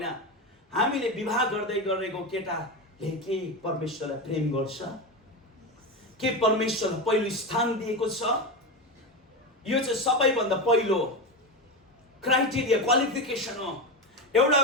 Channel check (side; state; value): both; normal; correlation 0.17